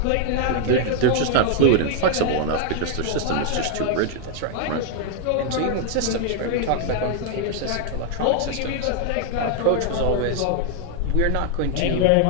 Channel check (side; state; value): both; different; correlation 0.00